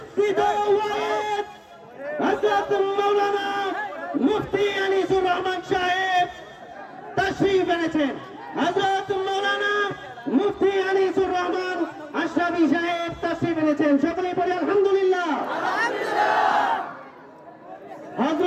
ওয়াহেদ হযরত মাওলানা মুফতি আনিসুর রহমান সাহেব তশরীফ এনেছেন। হযরত মাওলানা মুফতি আনিসুর রহমান আশরাফি সাহেব তশরীফ এনেছেন। সকলেই বলি আলহামদুলিল্লাহ।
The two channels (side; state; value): both; identical; correlation 1.00